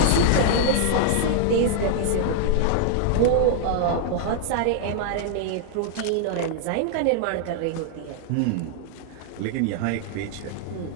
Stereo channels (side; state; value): both; different; correlation 0.00